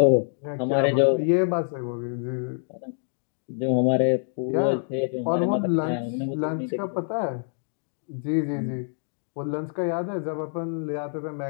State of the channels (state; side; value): silent; right; digital silence